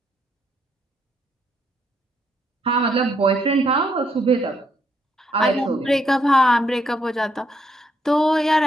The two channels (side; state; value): both; normal; correlation 0.74